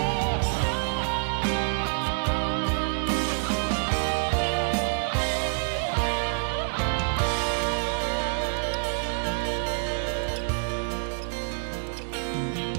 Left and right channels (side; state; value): left; silent; digital silence